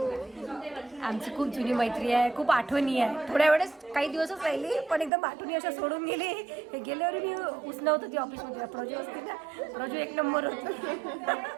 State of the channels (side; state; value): left; drops out; at 5.1 s